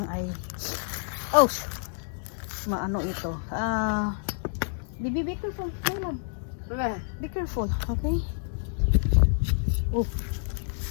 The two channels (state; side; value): silent; right; digital silence